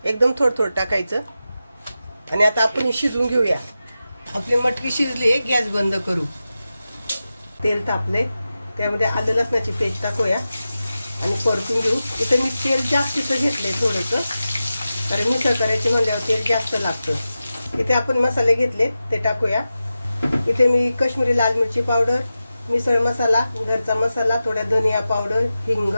एकदम थोडं थोडं टाकायचं. आणि आता आपण शिजवून घेऊया. आपली मटकी शिजली आहे. गॅस बंद करू. तेल तापले, त्यामध्ये आलं लसणाची पेस्ट टाकूया आणि परतून घेऊ. इथे मी तेल जास्तीचं घेतलंय थोडंसं, कारण मिसळ करायची म्हणल्यावर तेल जास्त लागतं. इथे आपण मसाले घेतले ते टाकूया. इथे मी काश्मीरी लाल मिरची पावडर, मिसळ मसाला, घरचा मसाला, थोडा धनिया पावडर, हिंग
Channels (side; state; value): both; inverted; correlation -0.93